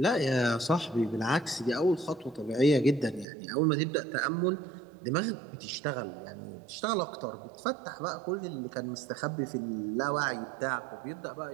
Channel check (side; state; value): left; drops out; at 3.2 s